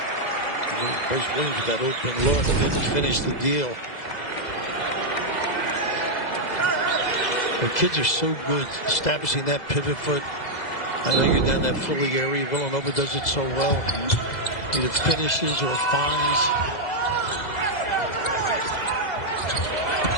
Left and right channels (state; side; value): late; right; 2.0 ms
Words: Bryce Williams with that open look didn't finish the deal. The kids are so good establishing that pivot foot. I know you're down that Philly area. Villanova does it so well. Either finishes or finds.